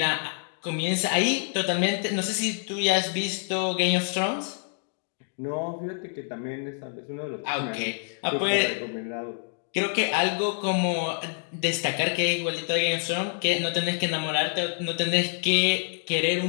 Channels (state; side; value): silent; right; 60 dB below the other